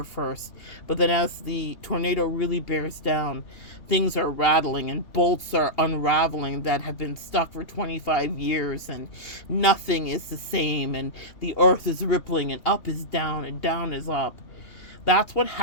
first. But then as the tornado really bears down, things are rattling and bolts are unraveling that have been stuck for 25 years, and nothing is the same, and the earth is rippling, and up is down and down is up. That's what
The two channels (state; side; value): late; right; 2.8 ms